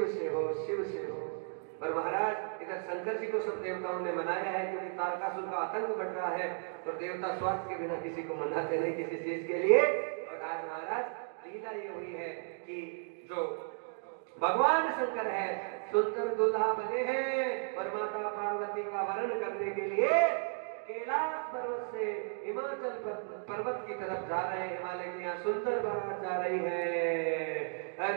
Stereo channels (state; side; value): silent; left; 55 dB below the other